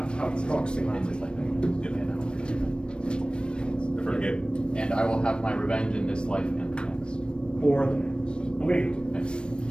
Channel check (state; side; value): late; right; 0.055 ms